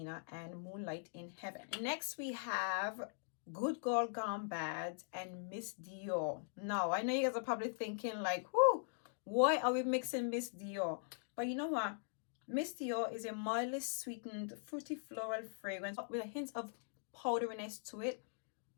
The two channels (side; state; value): right; silent; digital silence